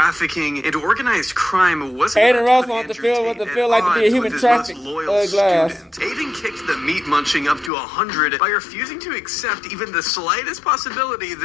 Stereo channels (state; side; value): drops out; right; at 7.7 s